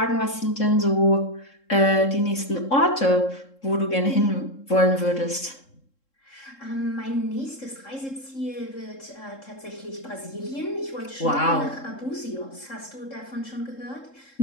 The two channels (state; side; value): late; right; 3.7 ms